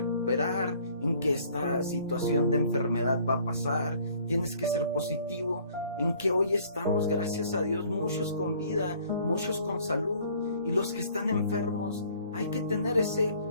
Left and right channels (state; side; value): inverted; both; correlation -0.57